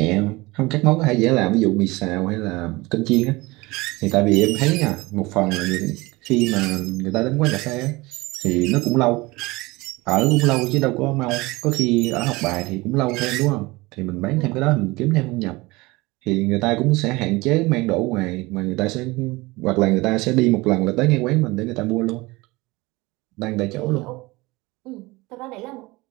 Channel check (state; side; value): quieter; left; 22.3 dB